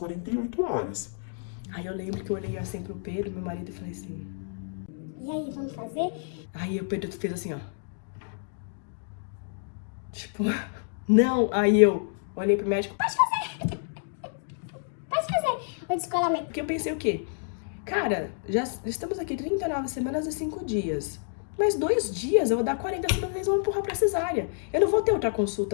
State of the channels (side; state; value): right; silent; digital silence